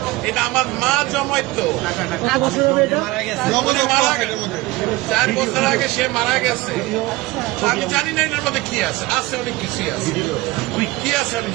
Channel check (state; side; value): quieter; left; 20.1 dB